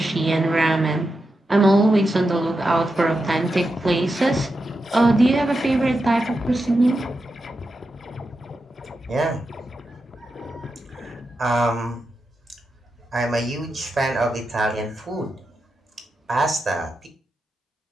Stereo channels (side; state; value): both; normal; correlation 0.88